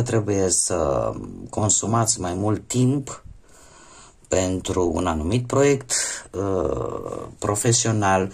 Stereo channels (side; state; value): both; identical; correlation 1.00